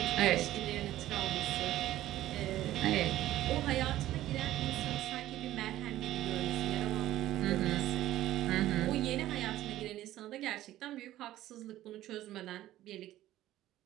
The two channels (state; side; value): quieter; left; 14.4 dB